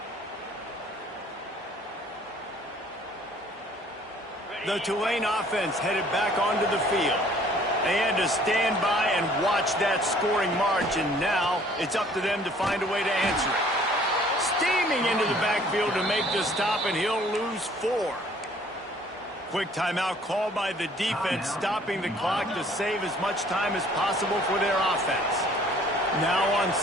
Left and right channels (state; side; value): normal; both; correlation 0.56